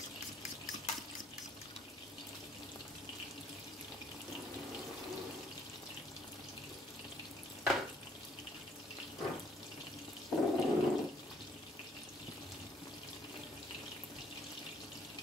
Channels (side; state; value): both; normal; correlation 0.64